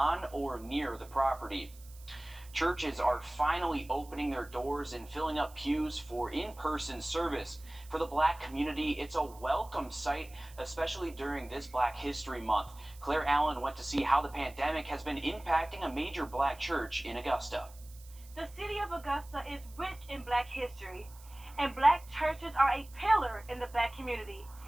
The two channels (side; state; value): right; noise; hiss, 22 dB below the sound